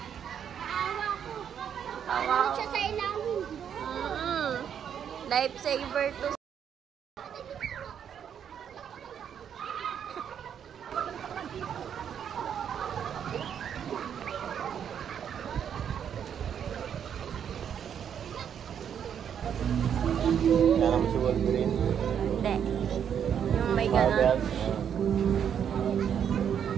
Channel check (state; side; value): quieter; left; 8.5 dB